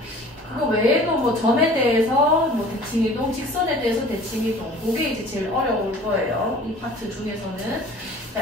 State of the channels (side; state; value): both; normal; correlation 0.46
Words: 그거 외에도 뭐 점에 대해서 뭐 대칭이동, 직선에 대해서 대칭이동, 그게 이제 제일 어려울 거예요. 이 파트 중에서는.